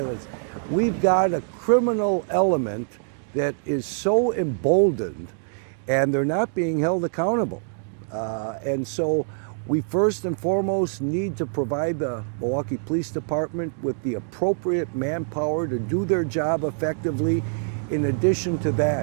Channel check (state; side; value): silent; left; digital silence